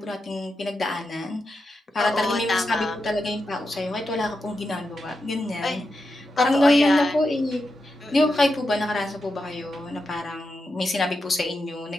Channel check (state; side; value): normal; both; correlation 0.87